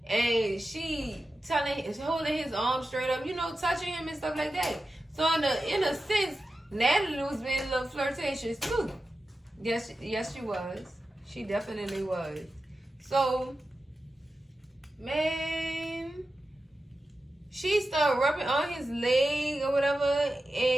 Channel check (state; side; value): normal; both; correlation 0.92